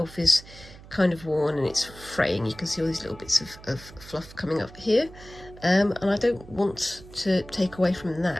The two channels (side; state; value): right; noise; hum, 19 dB below the sound